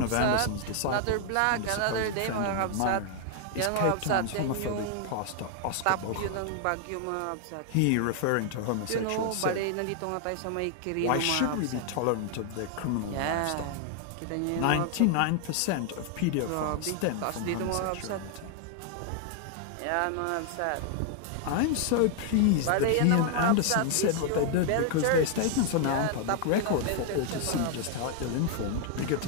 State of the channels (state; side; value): different; both; correlation 0.00